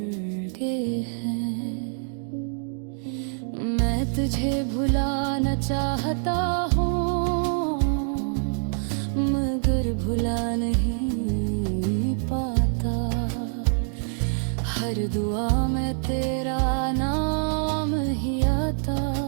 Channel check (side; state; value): left; silent; 61 dB below the other